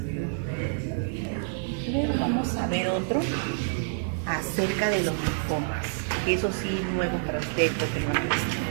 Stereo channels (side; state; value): left; silent; digital silence